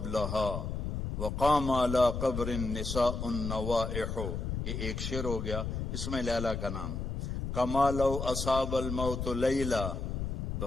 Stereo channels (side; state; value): left; noise; rumble, 3 dB below the sound